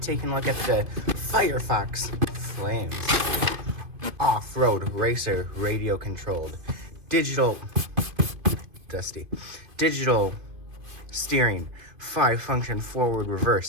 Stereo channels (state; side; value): late; left; 2.6 ms